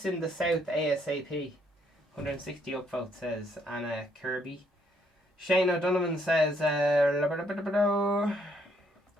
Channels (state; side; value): normal; both; correlation 0.70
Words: in the South ASAP. 160 upvotes, says Anna Kirby. Shane O'Donovan says,